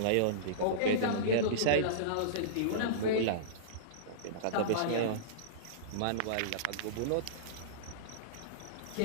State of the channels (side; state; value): both; different; correlation -0.04